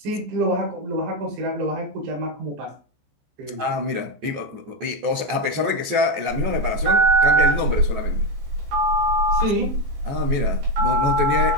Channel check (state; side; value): late; left; 14 ms